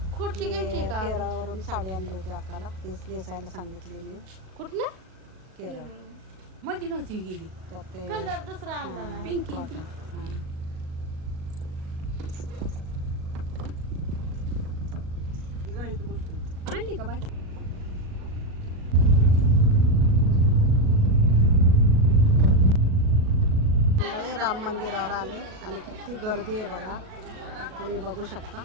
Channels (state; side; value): late; left; 37 ms